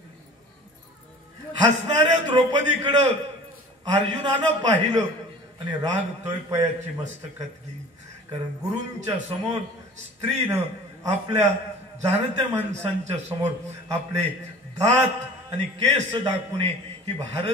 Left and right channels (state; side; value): normal; both; correlation 0.43